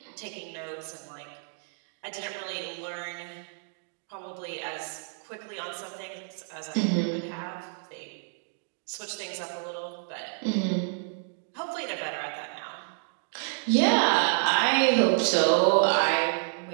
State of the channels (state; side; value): silent; left; digital silence